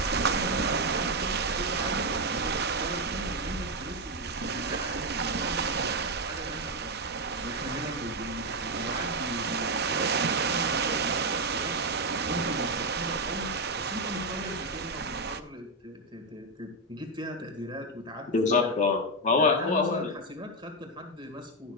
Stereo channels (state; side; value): normal; both; correlation 0.05